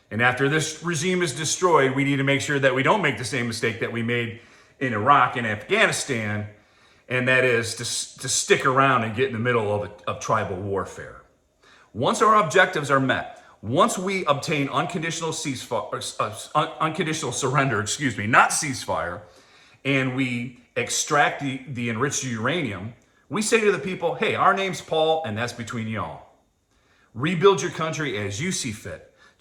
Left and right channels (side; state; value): both; identical; correlation 1.00